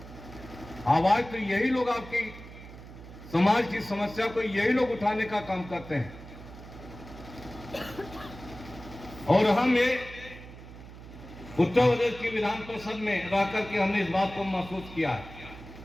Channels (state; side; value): noise; right; hum, 16 dB below the sound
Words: आवाज तो यही लोग, आपकी समाज की समस्या को यही लोग उठाने का काम करते हैं। और हम ये उत्तर प्रदेश की विधान परिषद में रहकर के हमने इस बात को महसूस किया है